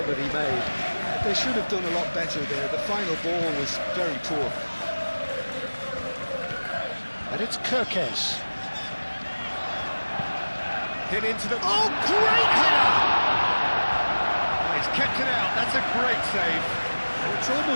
that he made. They should have done a lot better there. The final ball was very poor. And it's Kirkes. Hit into the... Oh, great header! He's kept it out, that's a great save. It's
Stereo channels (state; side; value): inverted; both; correlation -1.00